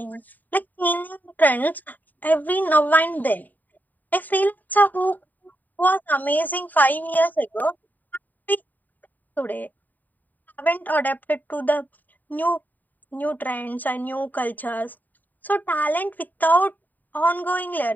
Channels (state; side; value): late; right; 0.086 ms